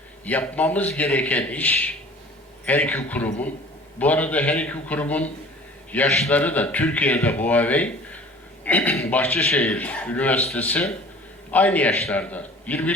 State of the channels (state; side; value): normal; both; correlation 0.46